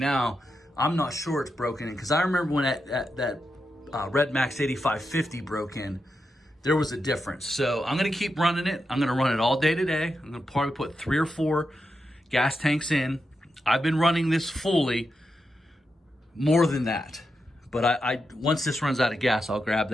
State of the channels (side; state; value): both; normal; correlation 0.87